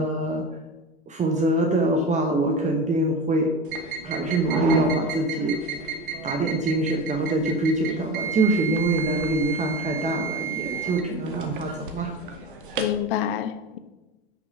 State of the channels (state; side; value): normal; both; correlation 0.27